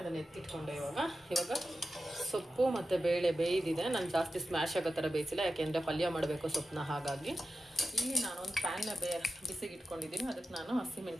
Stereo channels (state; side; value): normal; both; correlation 0.92